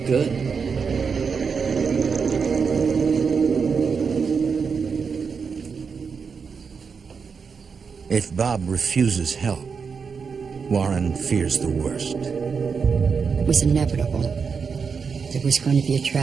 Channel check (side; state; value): left; quieter; 5.7 dB